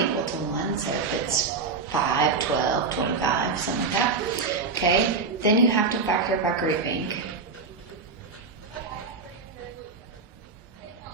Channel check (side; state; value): left; quieter; 4.5 dB